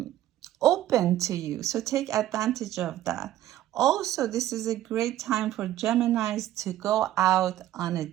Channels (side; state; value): left; quieter; 13.3 dB